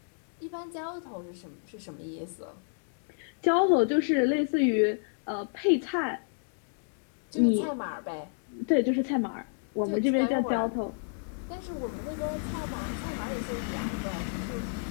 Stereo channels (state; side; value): silent; right; digital silence